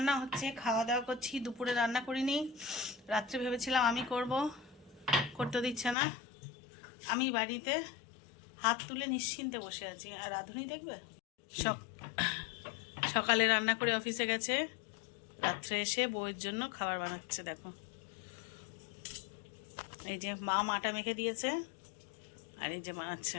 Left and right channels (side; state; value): right; drops out; at 6.0 s